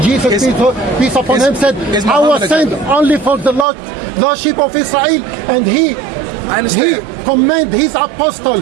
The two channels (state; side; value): drops out; left; at 3.7 s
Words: Jesus, peace upon him, said, I was sent only for the lordship of Israel, and he commanded his